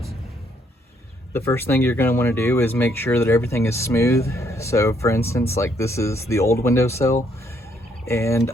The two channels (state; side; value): normal; both; correlation 0.70